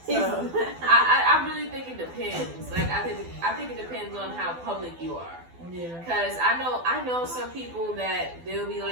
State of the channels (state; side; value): late; left; 12 ms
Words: So. I really think it depends. Like I think it depends on how public you are. Yeah. Cause I know some people that they'll be